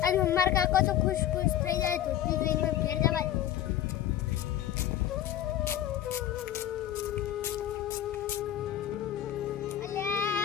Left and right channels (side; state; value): right; quieter; 11.5 dB